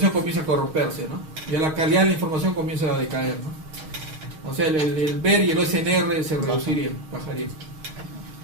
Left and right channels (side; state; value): left; late; 6.4 ms